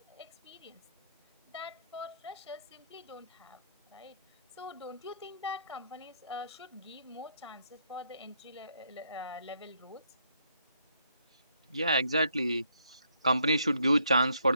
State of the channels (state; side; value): inverted; both; correlation -0.72